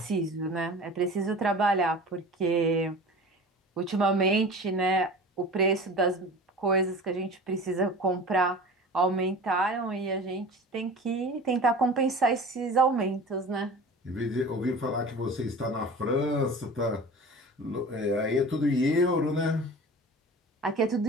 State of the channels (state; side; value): normal; both; correlation 0.38